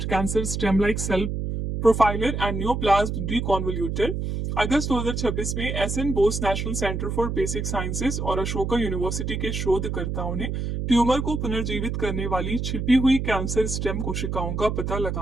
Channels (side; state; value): right; noise; hum, 2 dB below the sound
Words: cancer stem like cell profiler and neoplasm deconvolutor. अगस्त 2026 में SN Bose national centre for basic sciences और अशोका यूनिवर्सिटी के शोधकर्ताओं ने ट्यूमर को पुनर्जीवित करने वाली छिपी हुई कैंसर स्टेम कोशिकाओं का पता